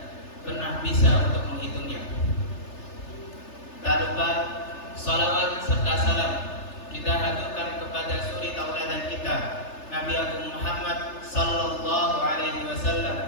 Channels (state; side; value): late; right; 3.3 ms